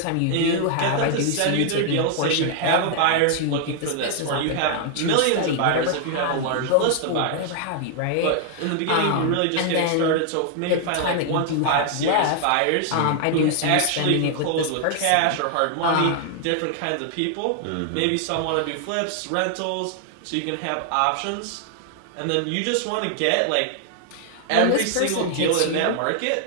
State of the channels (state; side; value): different; both; correlation 0.00